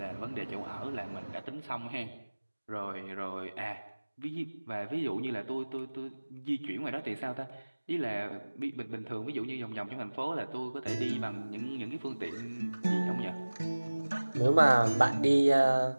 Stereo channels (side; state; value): both; inverted; correlation -1.00